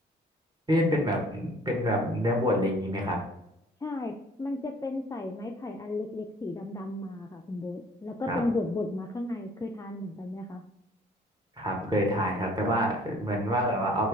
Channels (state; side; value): normal; both; correlation 0.55